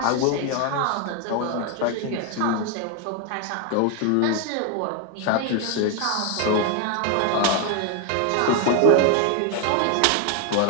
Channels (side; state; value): both; different; correlation 0.01